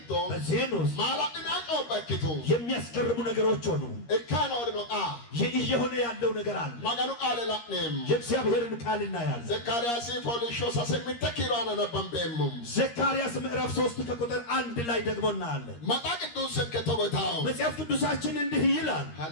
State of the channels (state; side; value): late; right; 13 ms